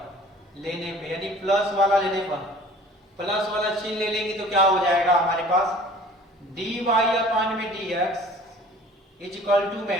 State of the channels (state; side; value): normal; both; correlation 0.48